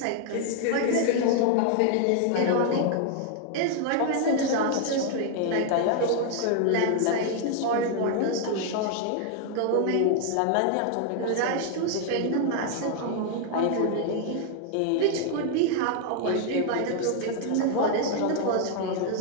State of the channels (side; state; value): both; different; correlation 0.00